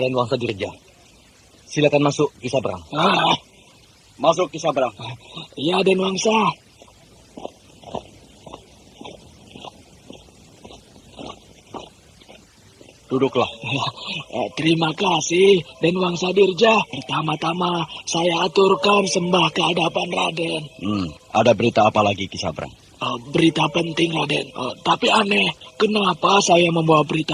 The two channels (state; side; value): identical; both; correlation 1.00